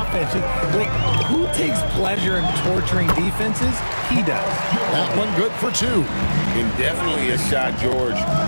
Like, who takes pleasure in torturing defenses? He does. That one good for two. And definitely a shot George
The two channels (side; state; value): both; inverted; correlation -1.00